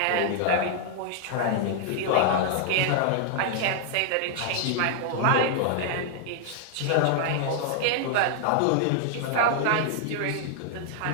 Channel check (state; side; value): different; both; correlation 0.00